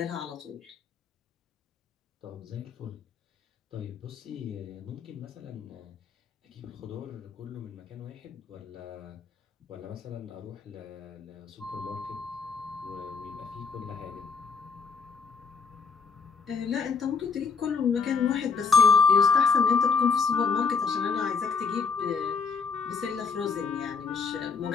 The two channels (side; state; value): right; quieter; 5.4 dB